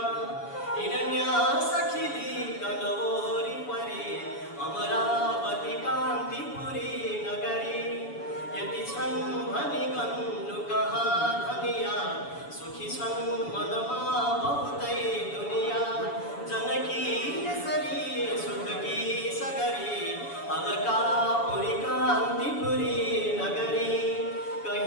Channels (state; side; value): late; right; 7.1 ms